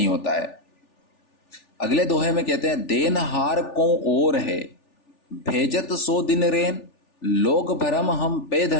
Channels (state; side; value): late; right; 3.4 ms